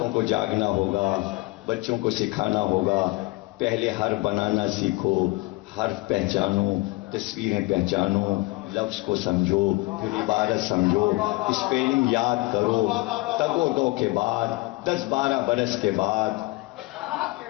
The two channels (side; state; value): right; quieter; 23.0 dB